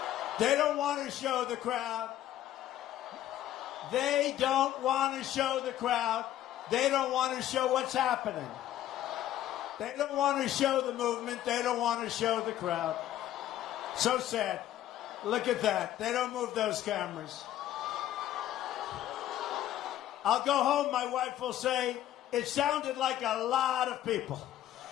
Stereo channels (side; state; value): right; quieter; 12.6 dB